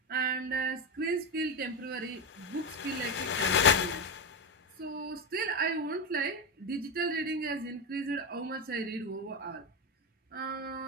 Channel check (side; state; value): both; normal; correlation 0.13